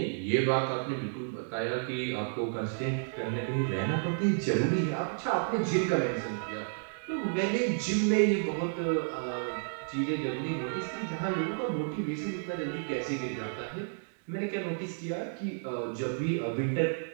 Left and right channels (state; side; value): silent; left; digital silence